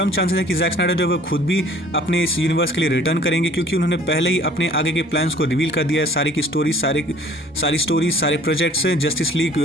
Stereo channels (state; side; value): normal; both; correlation 0.52